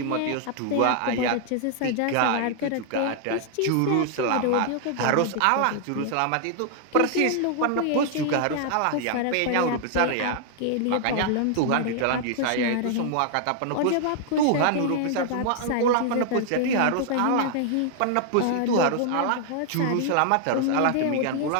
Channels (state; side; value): different; both; correlation 0.00